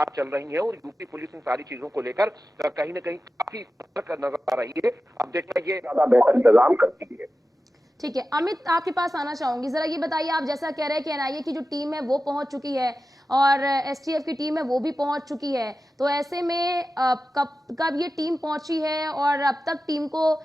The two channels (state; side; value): normal; both; correlation 0.94